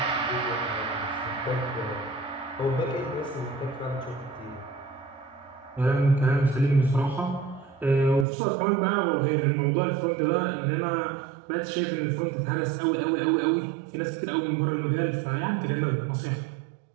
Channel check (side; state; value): left; drops out; at 8.2 s